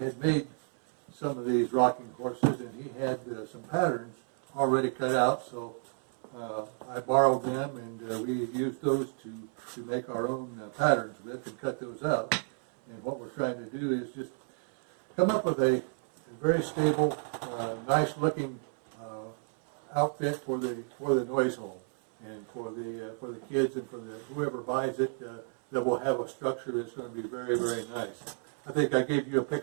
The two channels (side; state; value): left; silent; 56 dB below the other